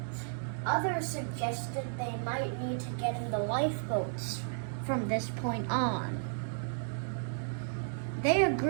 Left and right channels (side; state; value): left; silent; digital silence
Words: Others suggested they might need to get in the lifeboats from this point on. They